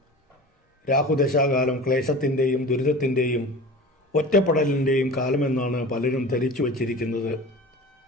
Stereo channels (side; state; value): both; normal; correlation 0.36